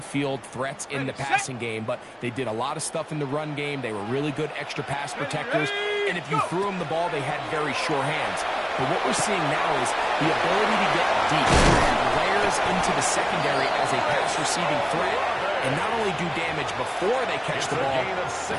threats in the passing game, but they did a lot of stuff in the run game. They were really good extra pass protectors, and if you threw them the ball, they had very sure hands. But what we're seeing now is the ability to get deep, layers into the secondary as a pass receiving threat, and not only do damage before they catch the ball,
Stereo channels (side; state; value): both; identical; correlation 1.00